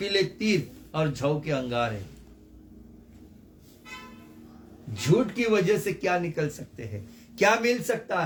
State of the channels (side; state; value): both; identical; correlation 1.00